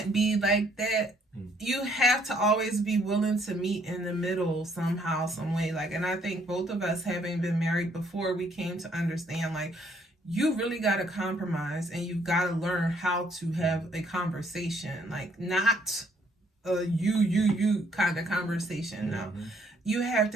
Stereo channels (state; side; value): normal; both; correlation 0.66